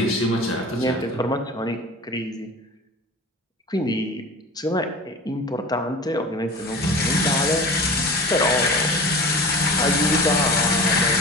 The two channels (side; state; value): both; normal; correlation 0.36